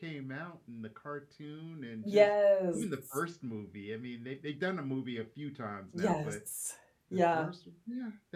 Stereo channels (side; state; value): both; identical; correlation 1.00